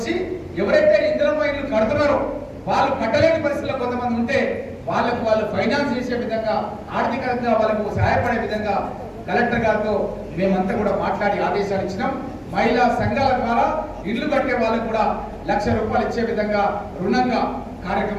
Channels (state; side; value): identical; both; correlation 1.00